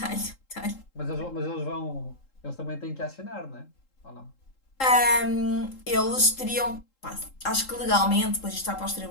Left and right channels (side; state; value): right; late; 3.7 ms